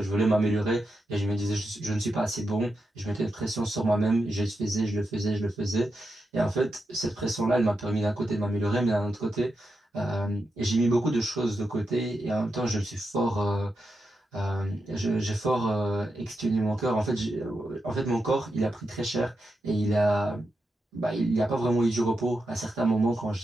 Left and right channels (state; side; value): normal; both; correlation 0.87